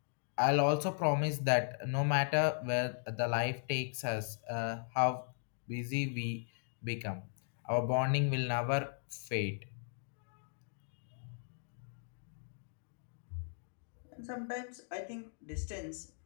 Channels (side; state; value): right; silent; digital silence